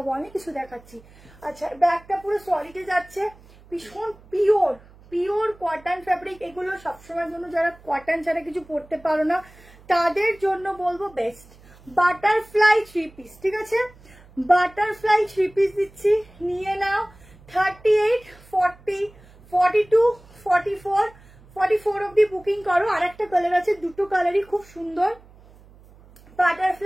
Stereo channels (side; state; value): right; noise; hum, 25 dB below the sound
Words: অনেক কিছু দেখাচ্ছি। আচ্ছা, ব্যাগটা পুরো সলিডে যাচ্ছে, ভীষণ পিওর পিওর কটন ফ্যাব্রিক। এগুলো সবসময়ের জন্য যারা কটন ছাড়া কিছু পরতে পারো না তাদের জন্য বলবো বেস্ট। বাটারফ্লাই 3 পিস, ঠিক আছে? বাটারফ্লাই 3 পিস দিচ্ছি, নিয়ে নাও। 38, 40, 42, 44, 44 অব্দি বুকিং করো। আর একটা কালার আছে, দুটো কালারই খুব সুন্দর।